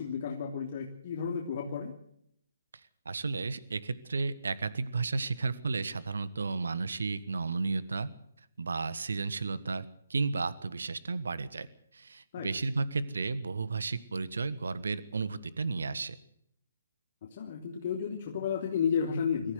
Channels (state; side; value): inverted; both; correlation -0.80